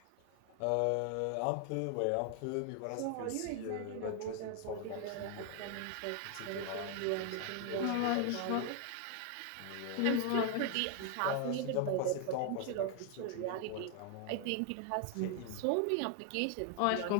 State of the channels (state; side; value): different; both; correlation 0.00